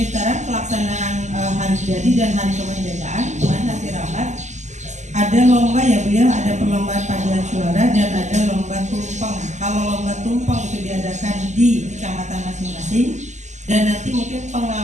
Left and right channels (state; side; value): late; left; 0.34 ms